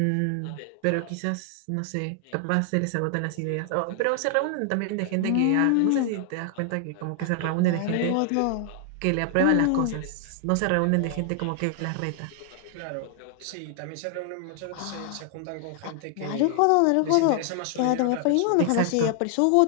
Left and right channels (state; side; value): different; both; correlation 0.00